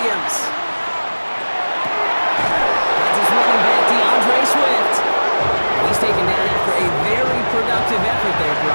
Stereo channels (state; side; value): inverted; both; correlation -1.00